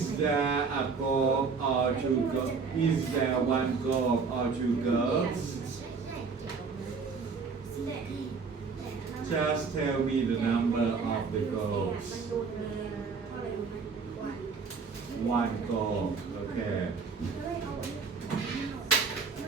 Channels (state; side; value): quieter; left; 5.1 dB